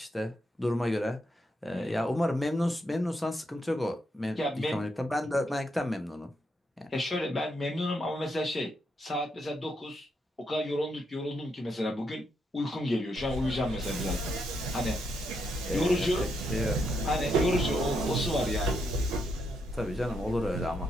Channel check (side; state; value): both; normal; correlation 0.79